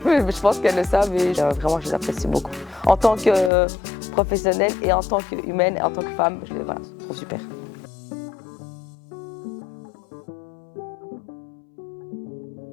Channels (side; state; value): right; drops out; at 3.5 s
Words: pense qu'elles le savent et vraiment je les apprécie beaucoup. En tant que professionnelle et en tant qu'humaine et en tant que femme, je les trouve super.